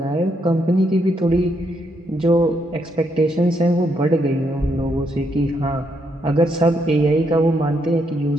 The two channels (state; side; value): normal; both; correlation 0.77